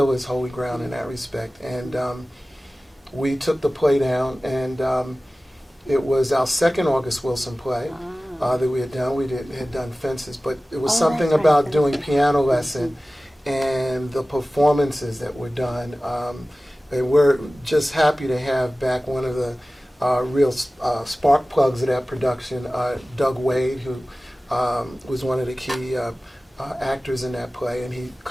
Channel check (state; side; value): normal; both; correlation 0.97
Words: is Holy Ground in that respect. And we took the play down, and it was our second August Wilson play that we had done. We had done Fences, but it was something that's right, about Fences. doing Piano Lesson and the performances that were done. And we're just happy to have back one of the real spark plugs of that production, Doug Wade, who was one of the key actors in that play, and he